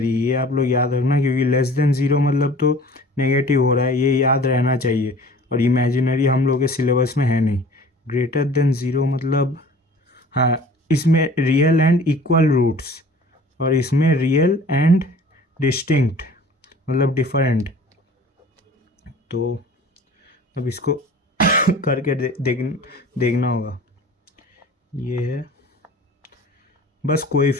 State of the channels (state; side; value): normal; both; correlation 0.46